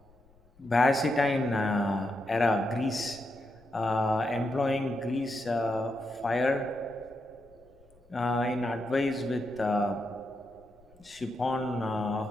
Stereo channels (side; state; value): left; noise; rumble, 29 dB below the sound